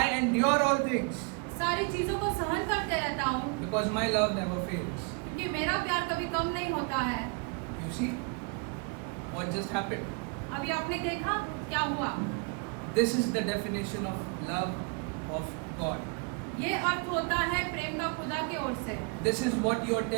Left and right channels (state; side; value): quieter; left; 33.1 dB